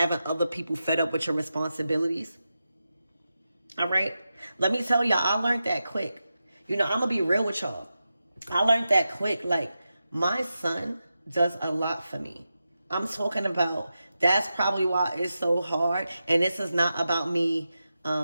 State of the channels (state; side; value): inverted; both; correlation -0.91